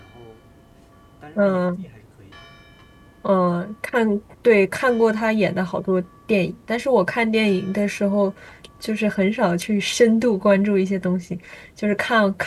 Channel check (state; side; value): identical; both; correlation 1.00